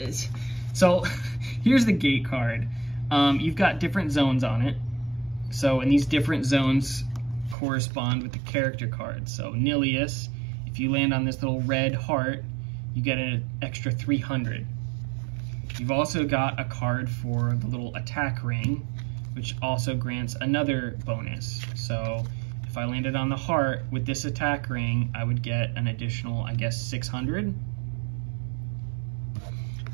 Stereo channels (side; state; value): left; drops out; at 7.6 s